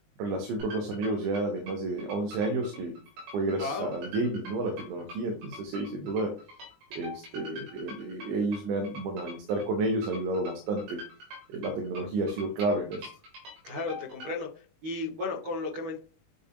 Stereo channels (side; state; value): left; late; 19 ms